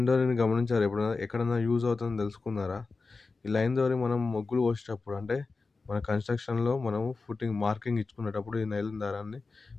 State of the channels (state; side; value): quieter; right; 4.1 dB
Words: డోరీని గమనించారా ఎప్పుడైనా? ఎక్కడన్నా యూజ్ అవుతుందని తెలుసుకున్నారా? ఈ లైన్ డోరీ మనం ముగ్గులు పోసేటప్పుడు అంటే మన కన్‌స్ట్రక్షన్‌లో మనం ఫుటింగ్ మార్కింగ్ ఇచ్చుకునేటప్పుడు ఈ నైలాన్ దారాన్ని